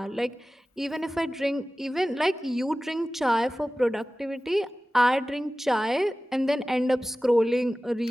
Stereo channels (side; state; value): both; normal; correlation 0.96